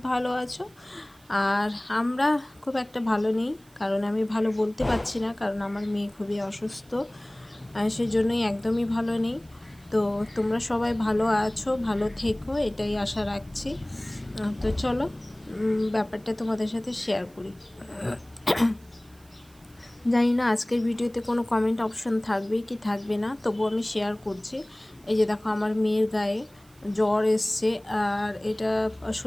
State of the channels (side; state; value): right; noise; hiss, 29 dB below the sound